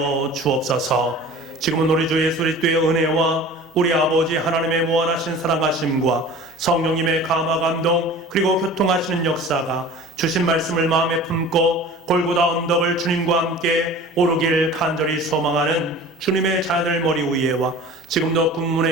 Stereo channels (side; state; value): both; normal; correlation 0.41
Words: 주옵소서. 지금은 우리 주 예수 그리스도의 은혜와 우리 아버지 하나님의 무한하신 사랑하심과 성령님의 감화 감동 그리고 교통하시는 역사가 주신 말씀을 마음에 품고 골고다 언덕을 주님과 함께 오르길 간절히 소망하는 주님의 자녀들 머리 위에와 지금도